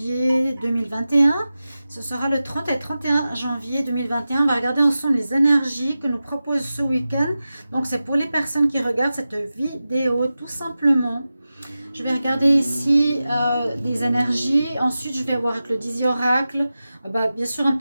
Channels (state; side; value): inverted; both; correlation -0.94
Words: 2021. Ce sera le 30 et 31 janvier 2021. On va regarder ensemble les énergies que nous propose ce week-end. Donc, c'est pour les personnes qui regardent cette vidéo, tout simplement. Je vais regarder ici des énergies. Ensuite, je vais voir avec le Dizzy Oracle. Bien sûr, un